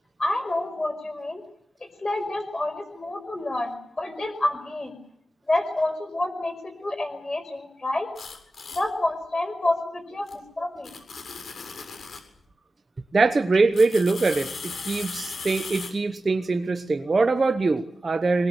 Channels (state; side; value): normal; both; correlation 0.94